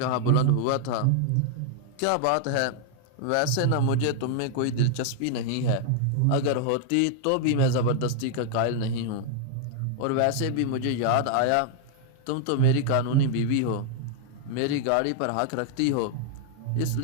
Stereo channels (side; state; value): both; different; correlation 0.00